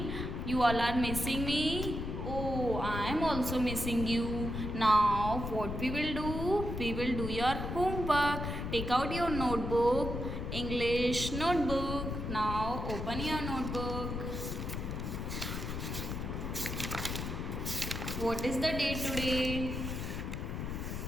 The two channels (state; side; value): noise; left; rumble, 4 dB below the sound